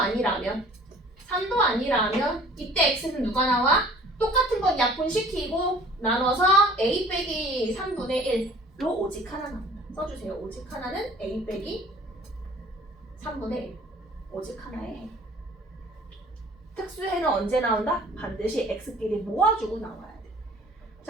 3도 아니라면 이때 x는 누가 나와? 똑같은 건 약분시키고 나눠서 a 빼기 3분의 1로 오직 하나 나온다. 써주세요. 오직 하나는 a 빼기 3분의 1 오직 하나의 해. 특수해는 언제 나온다? 반드시 x끼리 모아주고 나와야 돼.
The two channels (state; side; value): normal; both; correlation 0.50